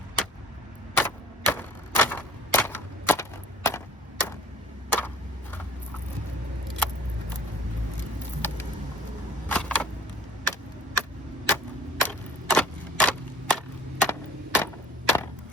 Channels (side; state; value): both; normal; correlation 0.48